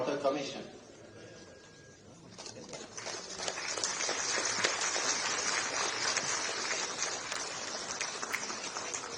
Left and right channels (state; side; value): identical; both; correlation 1.00